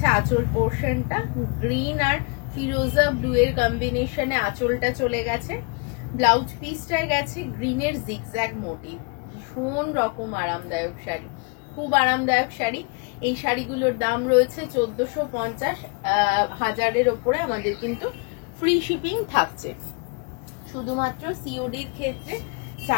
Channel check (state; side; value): quieter; right; 34.0 dB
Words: আঁচল পোর্শনটা, গ্রিন আর ফিরোজা ব্লু এর কম্বিনেশনে আঁচলটা চলে গেছে। ব্লাউজ পিসটায় গেছে গ্রিনের জিগজ্যাগ মোটিভ। ভীষণ রকম আরামদায়ক শাড়ি, খুব আরামদায়ক শাড়ি। এই শাড়িগুলোর দাম রয়েছে 1450, 1000-এর ওপরে আমাদের কিন্তু ফ্রি শিপিং থাকছে। শুধুমাত্র সিওডির ক্ষেত্রে